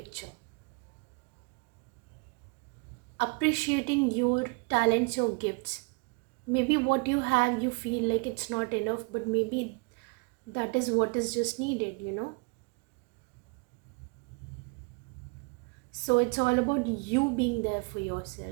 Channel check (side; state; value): left; quieter; 32.2 dB